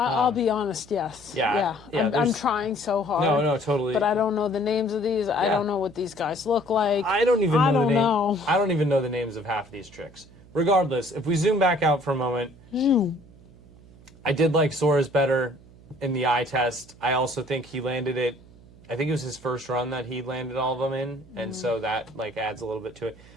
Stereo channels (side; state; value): right; noise; hum, 23 dB below the sound